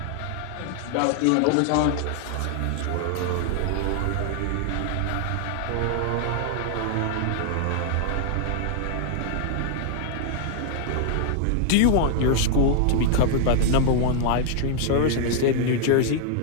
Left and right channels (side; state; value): both; different; correlation 0.00